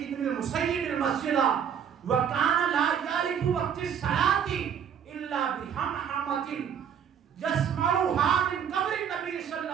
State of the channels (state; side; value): quieter; left; 8.1 dB